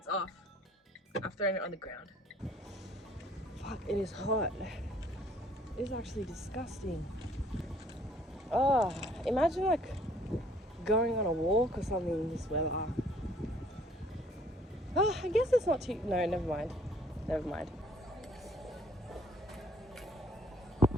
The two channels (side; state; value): both; normal; correlation 0.59